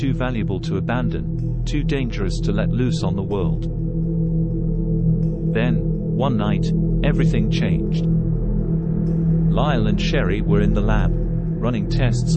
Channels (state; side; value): identical; both; correlation 1.00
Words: valuable to abandon, too dangerous to let loose on the world. Then, one night, everything changed. Lyle and Sherry were in the lab, running tests